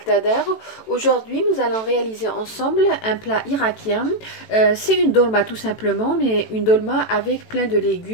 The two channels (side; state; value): right; late; 18 ms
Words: Aujourd'hui nous allons réaliser ensemble un plat irakien. C'est une dolma tout simplement, mais une dolma avec plein de